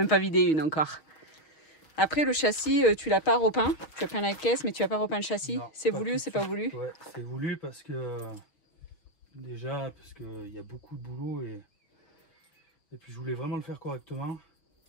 pas vidé une encore. Après, le châssis, tu l'as pas repeint. Tu as peint la caisse, mais tu n'as pas repeint le châssis. C'est voulu ou c'est pas voulu? Ouais, c'est voulu parce que... Parce qu'il y a beaucoup de boulot et puis je voulais vraiment le faire correctement.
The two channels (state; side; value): late; right; 6.4 ms